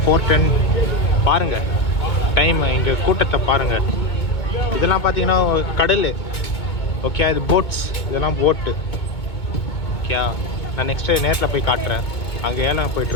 4:10 பாருங்கள் டைம். இங்கே கூட்டத்தை பாருங்கள். இதெல்லாம் பார்த்தீங்கன்னா கடல். ஓகே, இது போட்ஸ், இதெல்லாம் போட்டு. ஓகே, நான் நெக்ஸ்ட்டு நேரில் போய் காட்டுறேன். அங்கே ஏலம்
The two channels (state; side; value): late; right; 2.2 ms